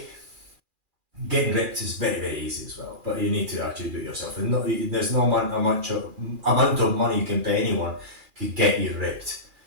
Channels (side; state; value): left; late; 2.4 ms